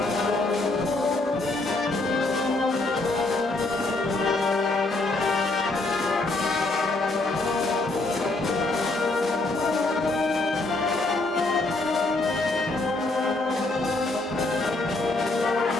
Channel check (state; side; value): quieter; right; 3.1 dB